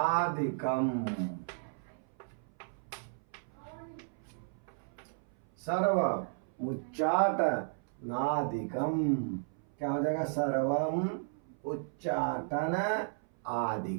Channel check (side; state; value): left; silent; 55 dB below the other